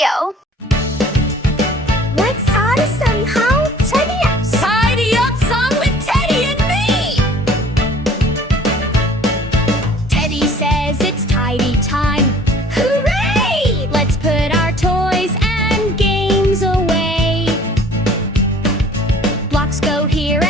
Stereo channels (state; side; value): normal; both; correlation 0.52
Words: Let's start somehow. Tidy up. Tidy up song with Teddy and me. Teddy says it's tidy time. Hooray! Let's put our toys and games away. Blocks go here